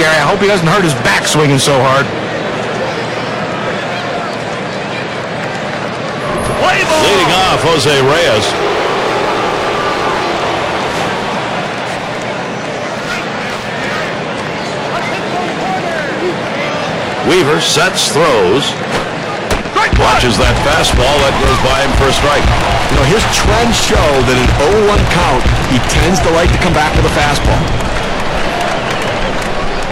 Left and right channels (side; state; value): both; identical; correlation 1.00